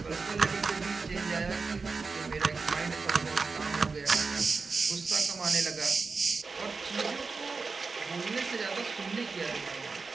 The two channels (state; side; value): quieter; left; 4.4 dB